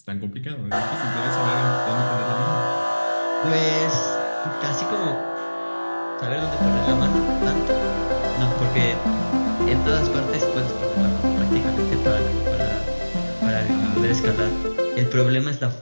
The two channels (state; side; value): inverted; both; correlation -1.00